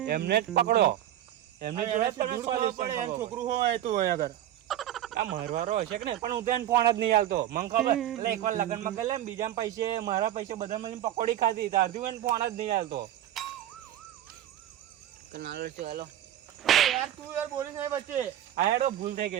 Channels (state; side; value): quieter; left; 12.2 dB